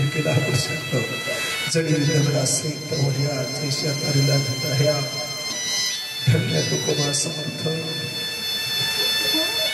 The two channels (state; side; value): identical; both; correlation 1.00